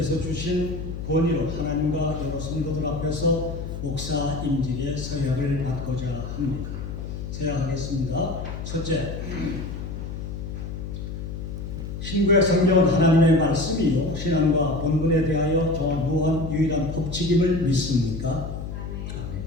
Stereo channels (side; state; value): left; noise; hum, 7 dB below the sound